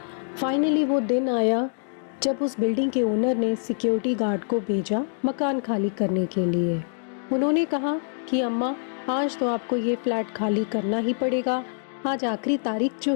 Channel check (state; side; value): silent; right; digital silence